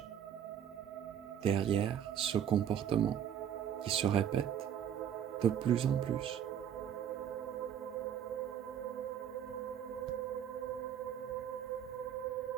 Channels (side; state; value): left; quieter; 9.4 dB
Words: derrière ce comportement qui se répète de plus en plus?